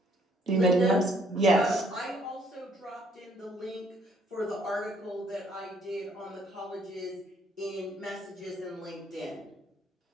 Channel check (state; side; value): normal; both; correlation 0.65